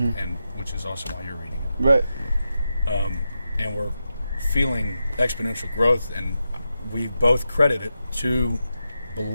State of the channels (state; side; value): inverted; both; correlation -0.89